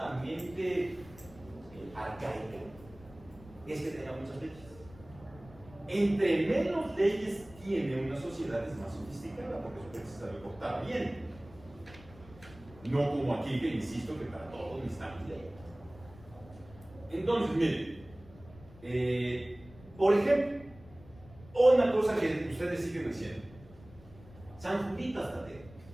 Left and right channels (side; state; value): left; noise; rumble, 21 dB below the sound